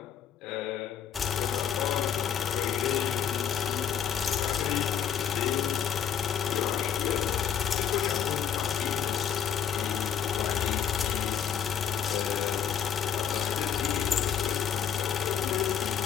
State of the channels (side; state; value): right; quieter; 8.3 dB